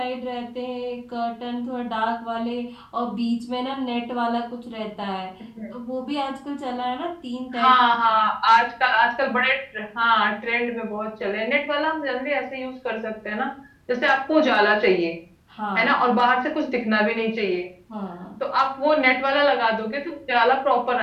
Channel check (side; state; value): both; identical; correlation 1.00